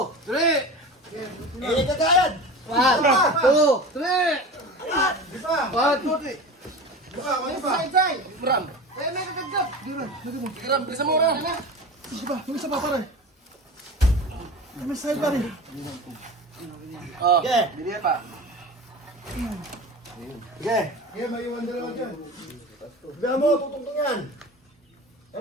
3. Init ka kayad! 1, 2, 3. Angat! 1, 2, 3. Side. Ram. Kaya may kagagap. Ram, bilisan mo ram. Yung isa pa pare. May side pa rin. Oh, Sige! bili pa. Sige! Kaya may iwan dalawa dyan. Sabihan mo, tutungtong yan!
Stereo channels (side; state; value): both; normal; correlation 0.32